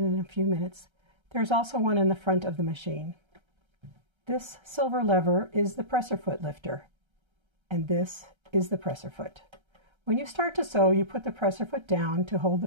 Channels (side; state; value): left; late; 1.3 ms